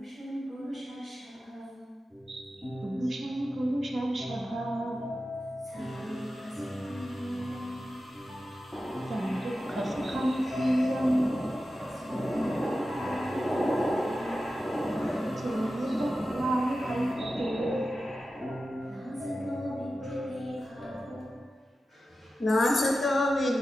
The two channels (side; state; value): both; normal; correlation 0.93